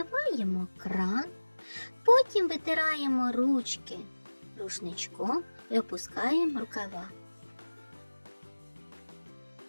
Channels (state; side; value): inverted; both; correlation -1.00